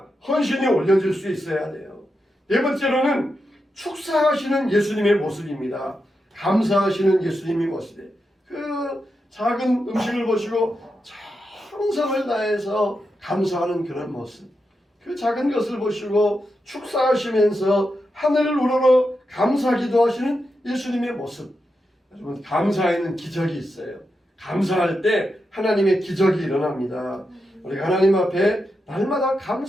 헌신이 올려질 수 있어야 돼요. 네 번째로는 축사하시는 예수님의 모습입니다. 감사하시는 예수님의 모습이에요. 그 작은 음식을 보시고 정성을 다해서 감사하는 그런 모습. 그 작은 것을 보시고 축사하시면서 하늘을 우러러 감사 기도하시는 예수님의 모습. 여러분, 감사에는 기적이 있어요. 감사할 때 하나님의 기적이 일어납니다. 우리가 하나님 앞에 날마다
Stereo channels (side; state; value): both; normal; correlation 0.87